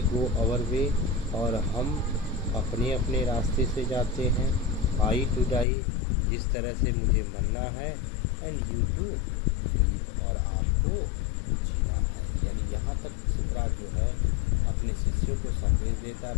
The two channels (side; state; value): right; drops out; at 5.7 s